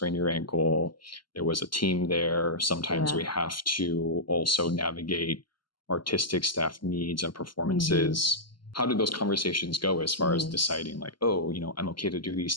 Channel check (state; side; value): late; right; 0.72 ms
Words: your ankle. There was a team there. Sometimes we have to also navigate artistic staff needs and performances. How did those conversations go as far as deciding like, oh, you know, I'm okay to do